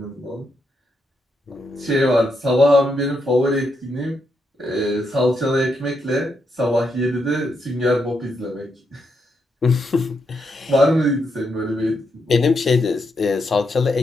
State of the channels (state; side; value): normal; both; correlation 0.81